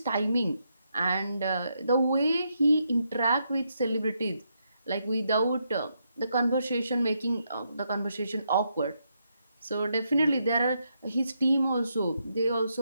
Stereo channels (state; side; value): inverted; both; correlation -0.80